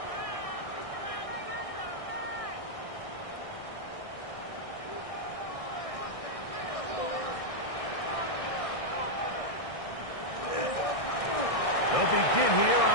They'll begin here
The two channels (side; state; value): right; late; 1.6 ms